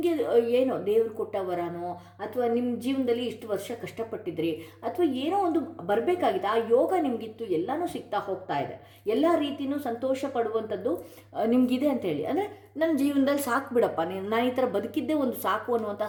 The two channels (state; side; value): identical; both; correlation 1.00